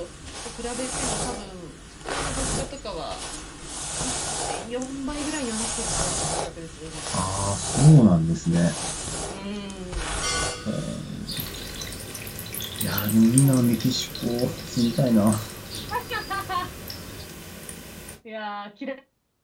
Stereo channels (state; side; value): identical; both; correlation 1.00